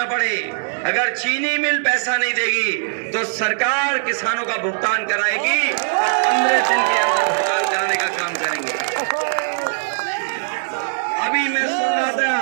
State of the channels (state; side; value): silent; left; digital silence